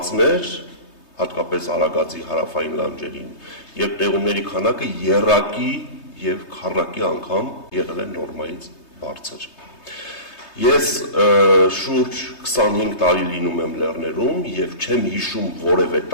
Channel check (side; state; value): right; late; 3.2 ms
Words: հատկապես Արագածի հարավային լանջերին, եւ տեղումների քանակը եռակի եւ քառակի անգամ եղել է նորմայից բարձր։ Ես շուրջ 25 տարի լինում եմ լեռներում եւ չեմ հիշում որևէ